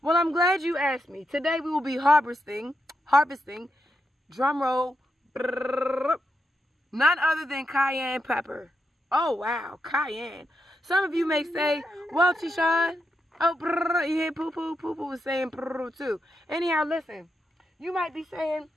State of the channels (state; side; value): normal; both; correlation 0.84